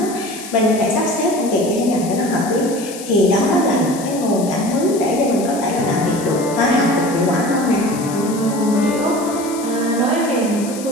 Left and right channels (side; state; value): left; noise; hiss, 13 dB below the sound